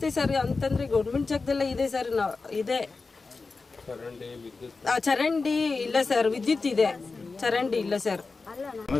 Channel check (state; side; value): quieter; right; 4.1 dB